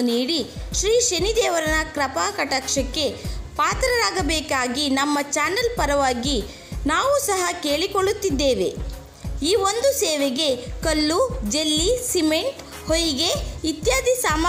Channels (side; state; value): both; identical; correlation 1.00